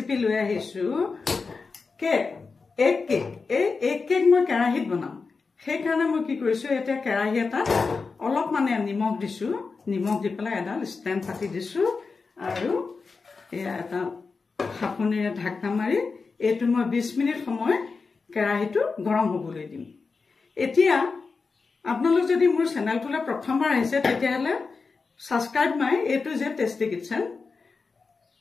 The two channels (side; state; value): right; quieter; 4.5 dB